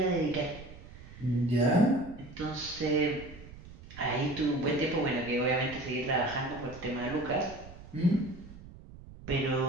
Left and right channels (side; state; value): right; noise; rumble, 17 dB below the sound